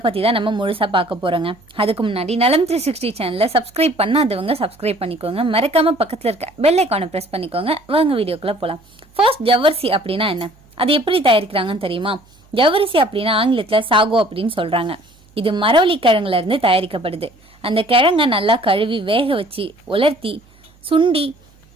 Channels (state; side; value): noise; right; hum, 30 dB below the sound